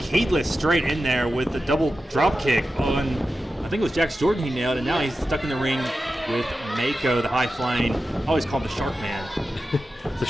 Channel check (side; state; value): both; normal; correlation 0.92